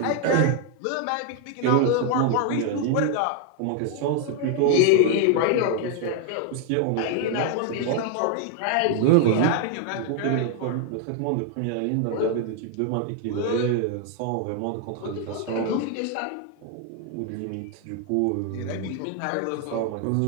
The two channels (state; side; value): different; both; correlation 0.00